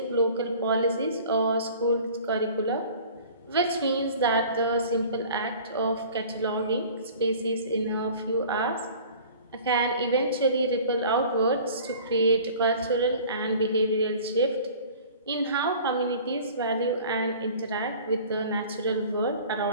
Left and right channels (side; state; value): both; inverted; correlation -0.45